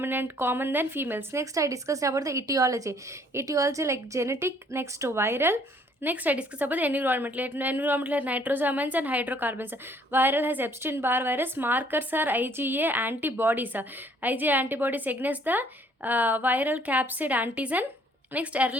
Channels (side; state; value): both; normal; correlation 0.61